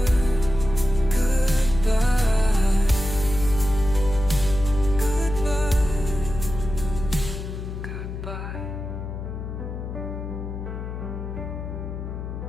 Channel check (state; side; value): noise; left; hum, 7 dB below the sound